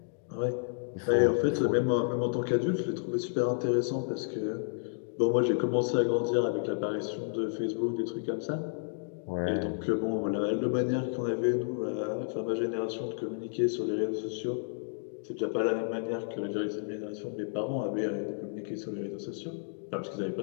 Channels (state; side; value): silent; right; digital silence